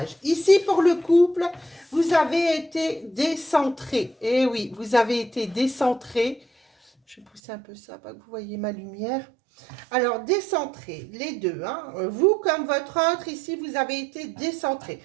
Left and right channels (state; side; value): drops out; left; at 7.4 s